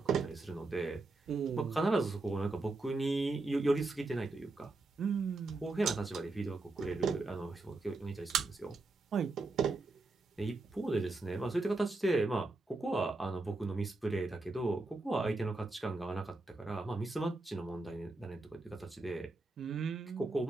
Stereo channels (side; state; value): left; quieter; 3.2 dB